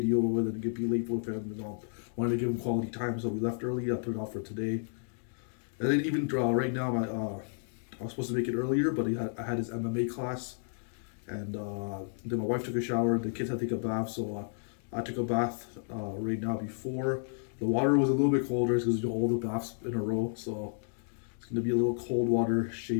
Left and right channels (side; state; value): right; silent; digital silence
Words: with it and be late with him. Wanted to give him quality time, so we left early. I put it off for today, and then even right now, I was supposed to make it earlier, but I had his MMA class, and then my wife took a shower. The kids had to take a bath, so I took a bath right now before. The water was a little bit colder because all the baths in a row, so it's gonna be a little cold water